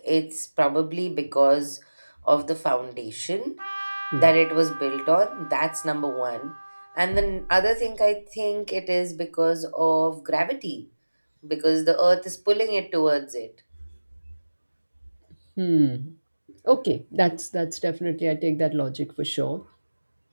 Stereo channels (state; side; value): inverted; both; correlation -1.00